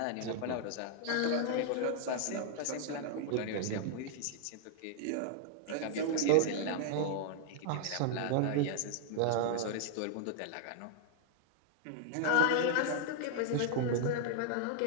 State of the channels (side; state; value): both; different; correlation -0.01